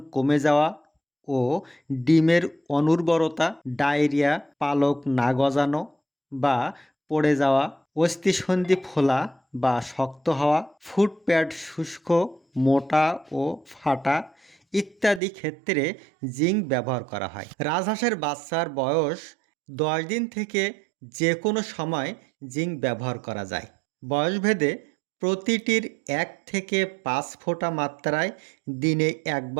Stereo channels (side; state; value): left; drops out; at 15.2 s